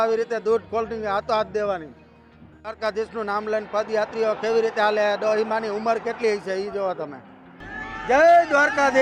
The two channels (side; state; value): both; identical; correlation 1.00